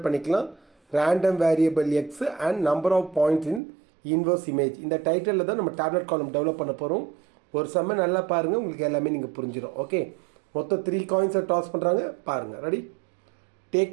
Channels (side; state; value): left; drops out; at 3.6 s